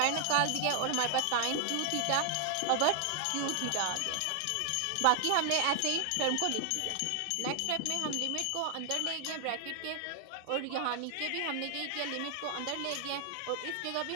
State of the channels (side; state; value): both; different; correlation 0.00